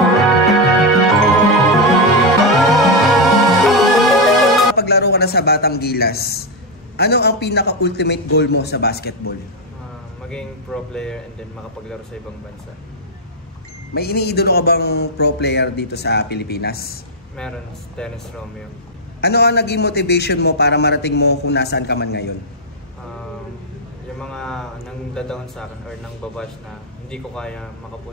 Paglaro ka na sa Batang Gilas, ano ang pinaka-ultimate goal mo sa basketball? Maging pro player and then makapaglaro sa ibang bansa. May iniidolo ka bang pro player dito sa Pilipinas? Meron, Dennis Romeo. Ano ang naging motivation mo para marating mo kung nasaan ka man ngayon? Yung mga nang dadaon sa akin or nang babash na hindi ko kaya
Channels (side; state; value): both; normal; correlation 0.04